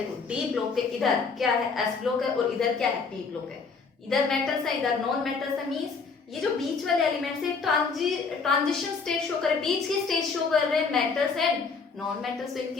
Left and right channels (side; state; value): right; quieter; 4.9 dB